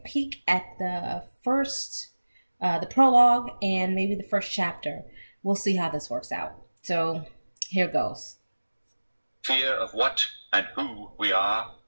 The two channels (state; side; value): inverted; both; correlation -1.00